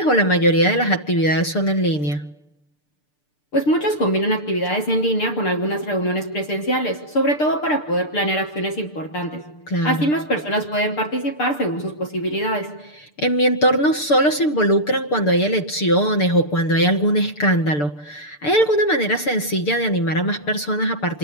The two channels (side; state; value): right; late; 6.7 ms